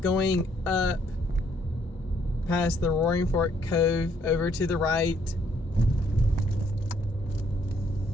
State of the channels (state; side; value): normal; both; correlation 0.68